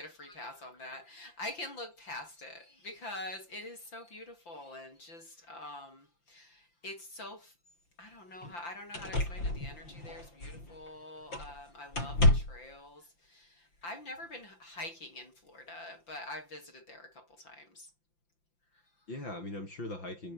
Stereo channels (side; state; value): right; late; 5.8 ms